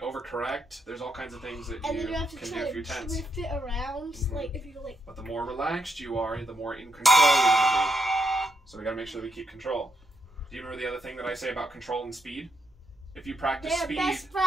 There's all kinds of things that And you then you have to can try do if to you're tense. drift it around, like if you like. But the more relaxed you are, the more in control you're gonna be. So we gotta make sure that we keep control. Do you remember the other thing that I say about control and speed? If you practice They're speed, best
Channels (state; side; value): normal; both; correlation 0.79